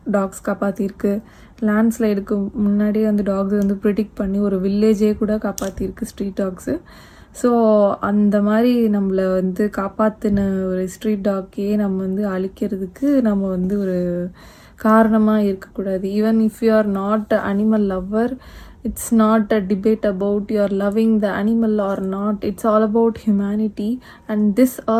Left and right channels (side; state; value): both; identical; correlation 1.00